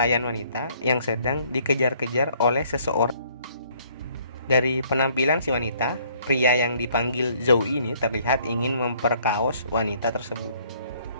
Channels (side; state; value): both; inverted; correlation -0.62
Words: wanita yang sedang dikejar-kejar oleh seseorang. Dari penampilan si wanita, pria yang dipanggil Zhou ini terlihat ingin memperkaos wanita tersebut.